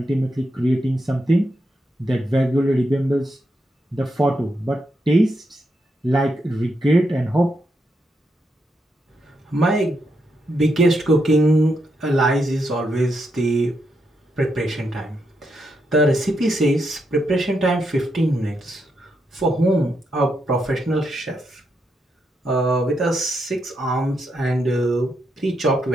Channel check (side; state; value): both; normal; correlation 0.82